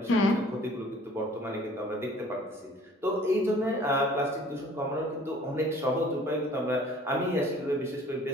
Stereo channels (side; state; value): both; normal; correlation 0.52